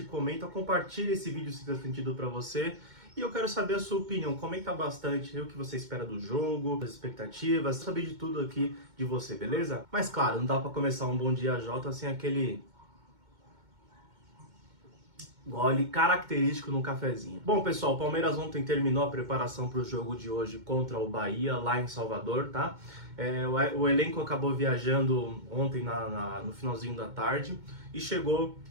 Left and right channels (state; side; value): late; left; 2.2 ms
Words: comenta, compartilhe esse vídeo se fez sentido para você. E eu quero saber a sua opinião, comenta bastante o que você espera do jogo, as expectativas, saber de tudo aqui de você, beleza? Mas claro, não dá para começar um Bom Dia Jota sem aquele gole característico no cafezinho. Bom, pessoal, o Palmeiras ontem terminou a preparação para o jogo de hoje contra o Bahia, lá em Salvador, tá? O elenco acabou viajando ontem no finalzinho da tarde e chegou